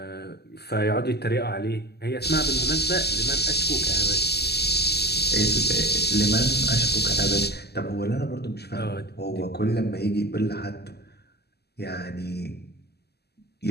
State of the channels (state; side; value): late; right; 0.47 ms